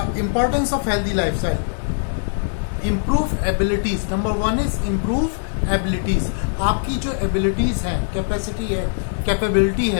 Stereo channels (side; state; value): right; silent; digital silence